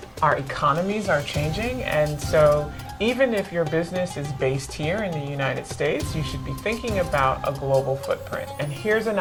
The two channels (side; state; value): both; identical; correlation 1.00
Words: our economies are changing, and so even if your business is based here in the United States, you should be thinking about a global footprint. And here's an